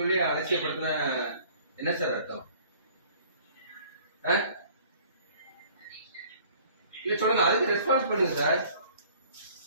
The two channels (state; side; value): inverted; both; correlation -0.53